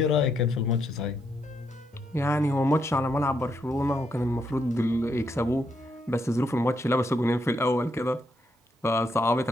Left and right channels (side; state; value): both; normal; correlation 0.78